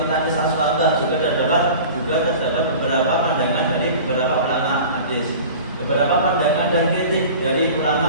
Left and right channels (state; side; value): inverted; both; correlation -0.39